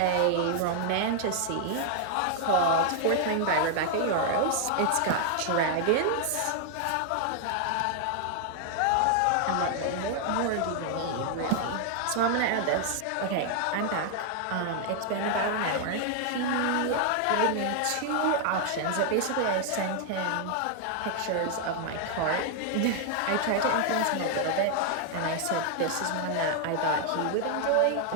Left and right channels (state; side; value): different; both; correlation 0.00